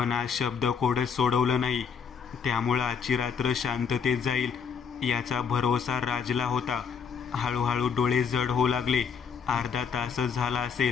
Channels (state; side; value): quieter; right; 6.6 dB